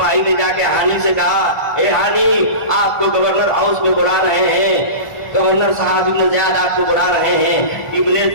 ने जाके हानी से कहा, ए हानी आपको गवर्नर हाउस में बुला रहे हैं, गवर्नर साहब इब्न ज़ियाद आपको बुला रहे हैं। इब्न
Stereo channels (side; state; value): right; late; 1.4 ms